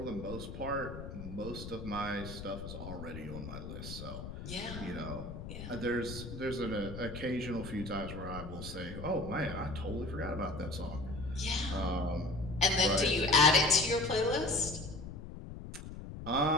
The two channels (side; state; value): left; noise; rumble, 9 dB below the sound